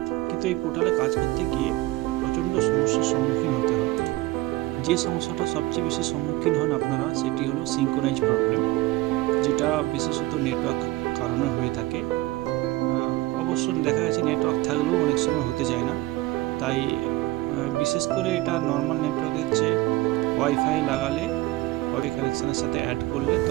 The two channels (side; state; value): left; quieter; 18.9 dB